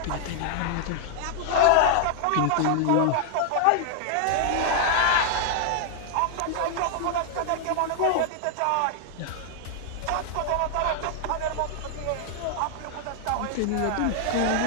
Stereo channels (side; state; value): both; different; correlation 0.00